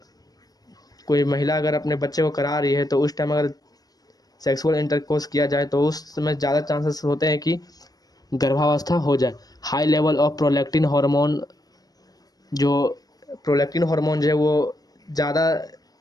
कोई महिला अगर अपने बच्चे को करा रही है तो उस टाइम अगर सेक्सुअल इंटरकोर्स किया जाए तो उस समय ज़्यादा चांसेस होते हैं कि गर्भावस्था हो जाए। High level of prolactin hormone, जो प्रोलैक्टिन हार्मोन जो है वो ज़्यादा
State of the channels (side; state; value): right; late; 0.19 ms